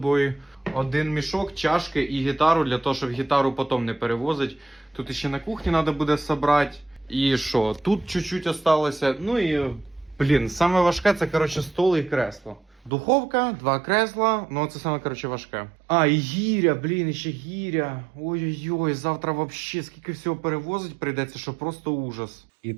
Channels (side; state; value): left; drops out; at 12.9 s